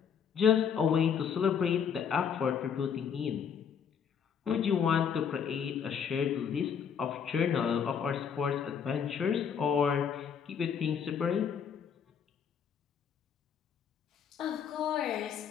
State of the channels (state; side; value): quieter; right; 7.4 dB